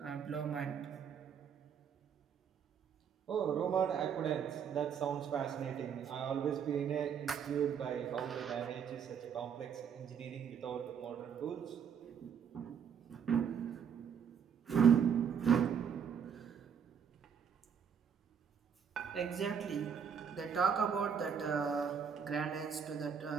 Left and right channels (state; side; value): quieter; left; 7.4 dB